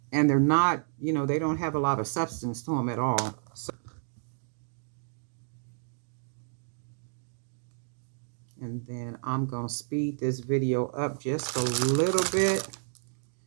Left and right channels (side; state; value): left; silent; digital silence